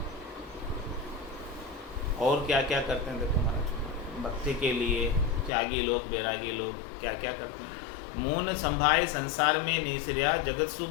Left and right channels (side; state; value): right; drops out; at 5.5 s